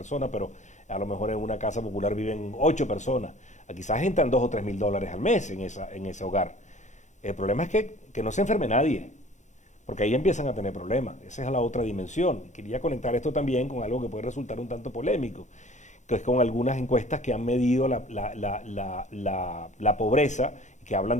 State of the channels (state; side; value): late; right; 0.35 ms